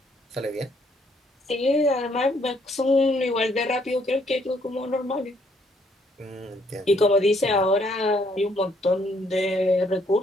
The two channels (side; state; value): both; normal; correlation 0.68